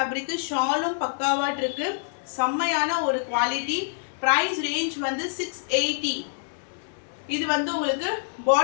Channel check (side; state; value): right; silent; 61 dB below the other